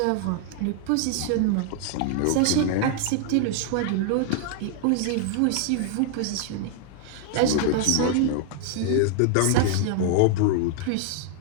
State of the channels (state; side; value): different; both; correlation 0.00